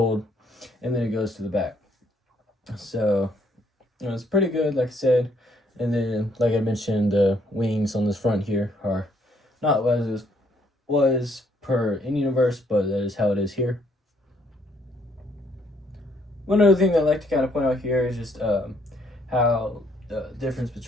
and then it goes to the back. So, it's pretty good, like I said. And then, like I mentioned, the wings on this front here are not what it was per in-universe, but that is how it is here. One other thing that I'd like to kind of point out here is just how the difference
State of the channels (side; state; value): both; normal; correlation 0.68